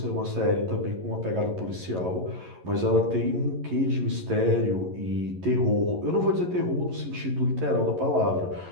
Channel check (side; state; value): left; late; 11 ms